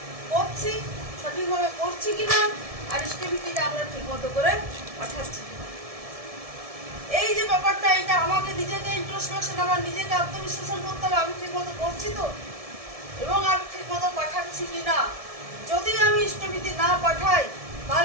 করছি, সঠিকভাবে করছি কিনা, আর ইষ্টভীতিটা আমরা ঠিক মতো করে পাঠাচ্ছি কিনা, এই যে ব্যাপারটা, এটা আমাকে নিজেকে ইন্ট্রোস্পেকশন, আমার নিজেকে আত্মবিশ্লেষণ করতে হবে, আমি ঠিক মতো করছি তো, এবং আমি ঠিক মতো পাঠাচ্ছি কিনা। যদি আমি ইষ্টভীতি না পাঠাই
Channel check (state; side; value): late; left; 1.7 ms